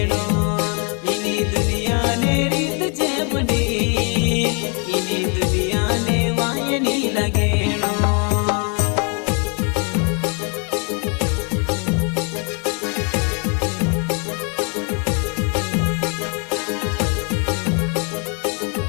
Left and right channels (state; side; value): quieter; right; 36.8 dB